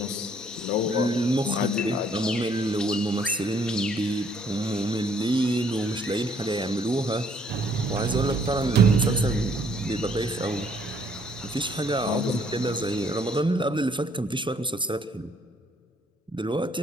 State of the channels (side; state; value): both; normal; correlation 0.64